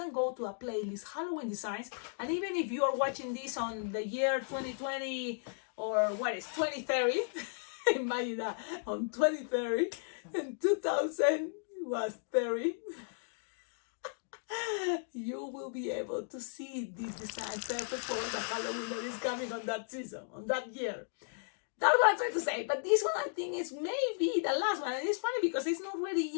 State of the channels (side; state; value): right; silent; digital silence